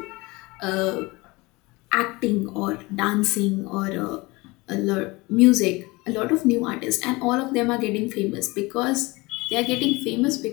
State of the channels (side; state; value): right; quieter; 23.4 dB